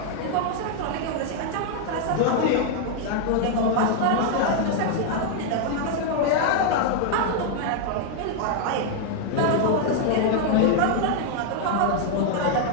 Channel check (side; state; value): both; different; correlation 0.00